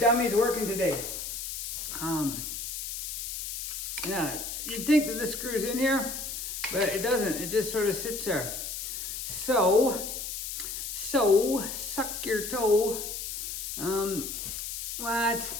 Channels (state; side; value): noise; left; hiss, 5 dB below the sound